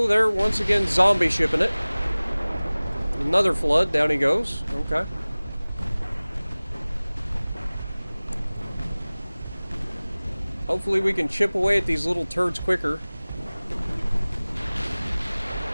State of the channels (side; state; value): both; inverted; correlation -0.99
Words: they're once again zombie shipping it. Another flood, down he goes. Okay. Hopefully we can chip away at these little turds quicker.